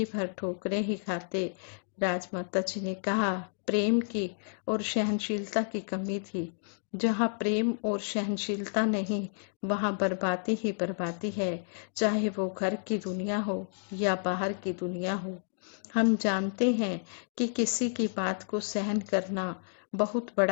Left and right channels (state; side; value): silent; right; digital silence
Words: भर ठोकरें ही खाते। राजमाता जी ने कहा, प्रेम की और सहनशीलता की कमी थी। जहाँ प्रेम और सहनशीलता नहीं वहाँ बर्बादी ही बर्बादी है, चाहे वो घर की दुनिया हो या बाहर की दुनिया हो। हम जानते हैं कि किसी की बात को सहन करना बहुत